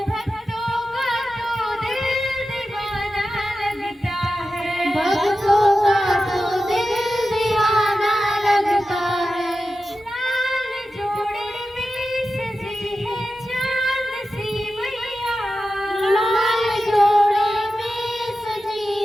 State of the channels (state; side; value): normal; both; correlation 0.92